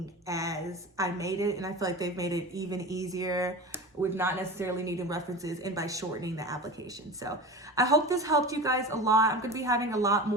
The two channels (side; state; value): both; normal; correlation 0.31